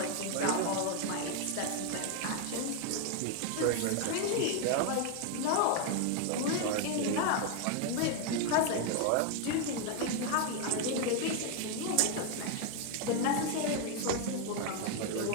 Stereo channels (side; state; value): both; different; correlation 0.01